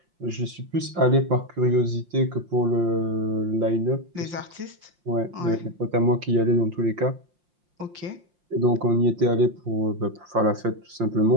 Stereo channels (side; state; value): left; late; 5.7 ms